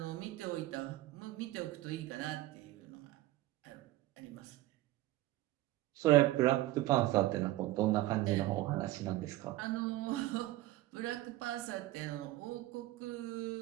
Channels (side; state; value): left; quieter; 16.5 dB